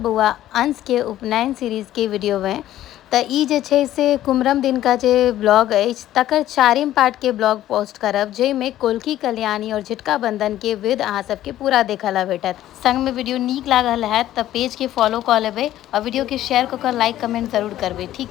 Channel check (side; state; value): right; quieter; 13.3 dB